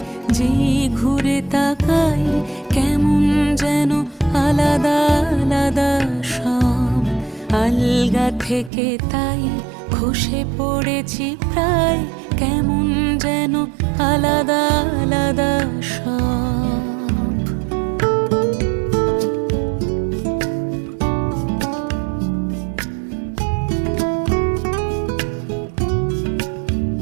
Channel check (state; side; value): drops out; left; at 8.7 s